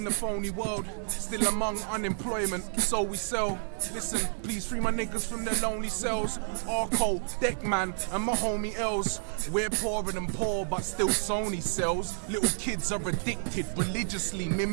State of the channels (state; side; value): silent; left; 58 dB below the other